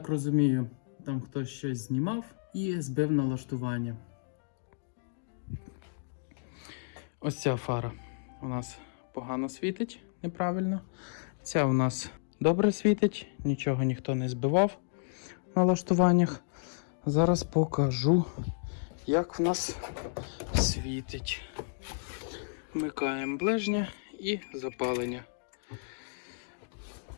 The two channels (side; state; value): right; silent; digital silence